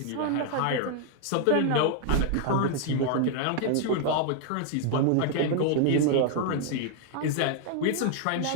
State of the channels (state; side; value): different; both; correlation 0.00